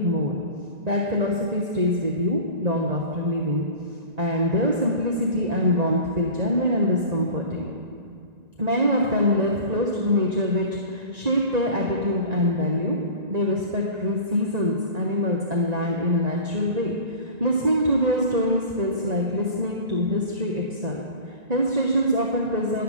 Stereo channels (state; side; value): late; left; 1.9 ms